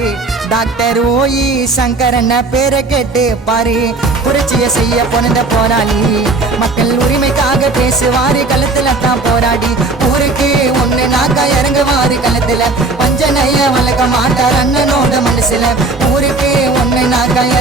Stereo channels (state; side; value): quieter; left; 3.5 dB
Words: டாக்டர் ஓ.இ. சங்கரண்ண பேரை கேட்டு பாரு. புரட்சியை செய்ய பிறந்த போராளி, மக்கள் உரிமைக்காக பேசுவாரு, களத்துல தான் போராடி ஊருக்கு ஒண்ணு நாக்கா இறங்குவாரு களத்துல. பஞ்சனைய வளர்க்க மாட்டார் அண்ணனோட மனசுல, ஊருக்கு ஒண்ணு நாக்கா